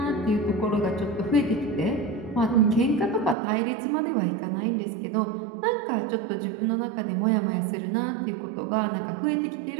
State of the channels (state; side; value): drops out; left; at 3.4 s